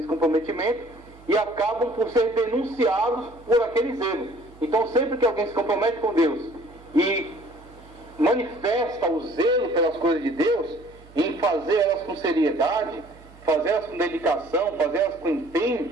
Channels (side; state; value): right; noise; hum, 23 dB below the sound